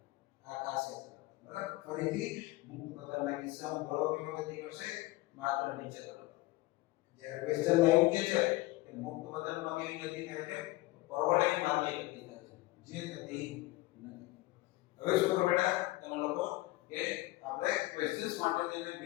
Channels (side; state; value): right; quieter; 19.9 dB